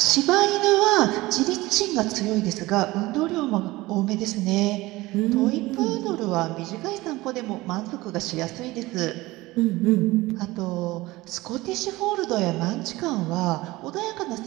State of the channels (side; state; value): left; quieter; 19.6 dB